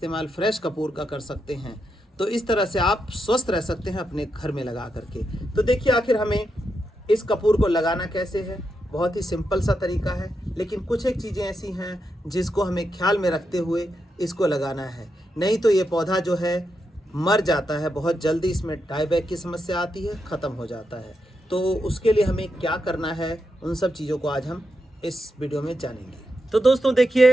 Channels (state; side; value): normal; both; correlation 0.85